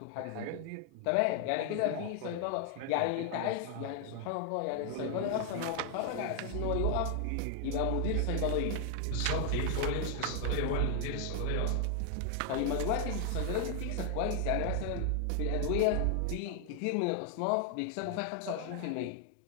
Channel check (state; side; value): different; both; correlation 0.00